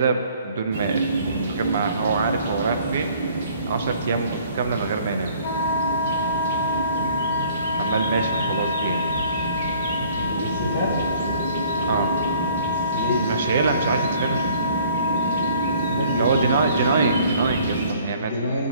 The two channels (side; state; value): both; inverted; correlation -0.56